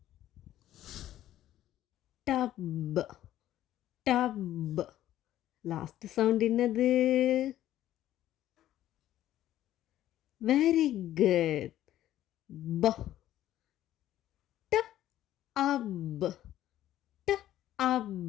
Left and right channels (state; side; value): quieter; right; 13.0 dB